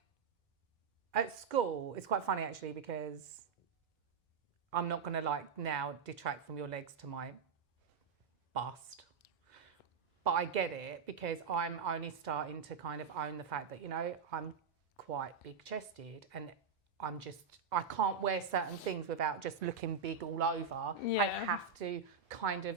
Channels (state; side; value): quieter; left; 5.7 dB